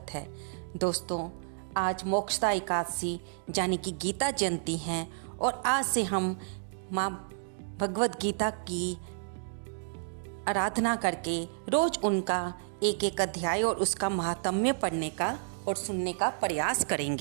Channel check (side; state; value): left; silent; digital silence